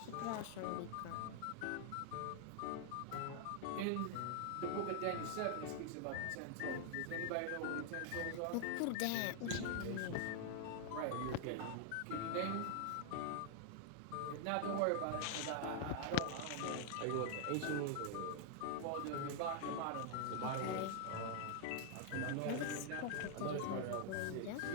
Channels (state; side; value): different; both; correlation -0.01